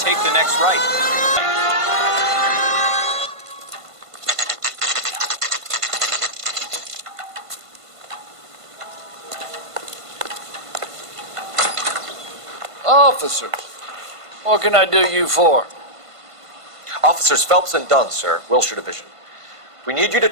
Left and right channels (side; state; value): left; late; 1.5 ms